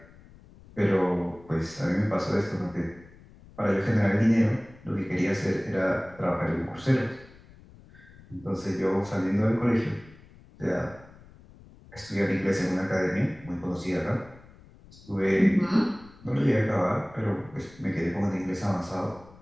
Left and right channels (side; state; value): left; noise; rumble, 23 dB below the sound